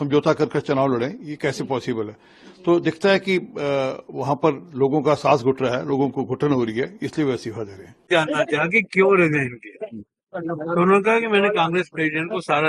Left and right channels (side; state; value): both; identical; correlation 1.00